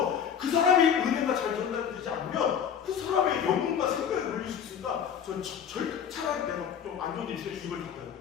그 사람의 은혜가 잘 전달되지 않으면 그 사람의 영혼과 생각에 걸릴 수 있으니까 전 차라리 내가 좀 안 좋은 일이 있어요. 입을 닫아요.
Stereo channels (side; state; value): right; quieter; 8.0 dB